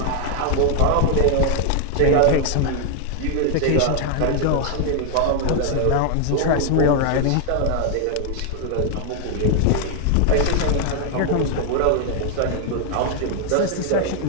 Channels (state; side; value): different; both; correlation 0.00